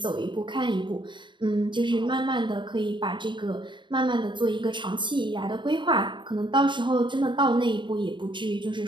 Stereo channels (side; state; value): left; late; 0.23 ms